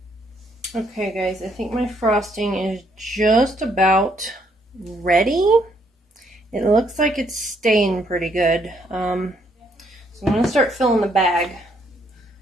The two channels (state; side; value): normal; both; correlation 0.71